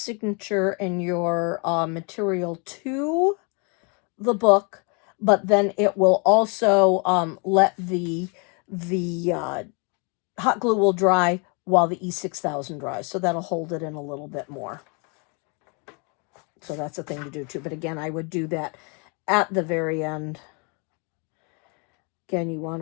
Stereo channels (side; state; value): right; quieter; 34.4 dB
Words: and your material to the book, but then it will also let the hot glue will dry while the E6000 dries, so that'll hold it in a little bit more. So that's a thing to do too. But again, I would do that at the very end. Again, you want